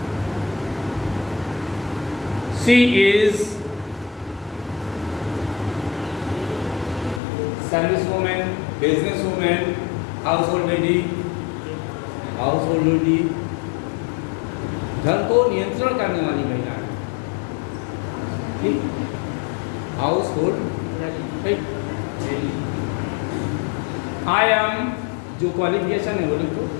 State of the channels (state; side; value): drops out; right; at 7.2 s